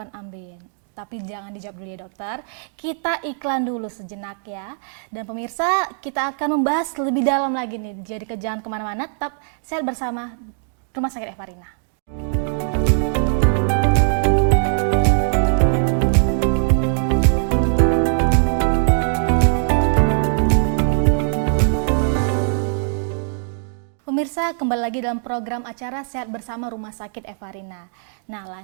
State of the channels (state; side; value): silent; left; digital silence